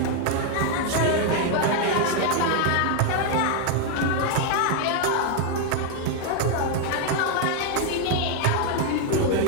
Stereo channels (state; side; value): different; both; correlation 0.00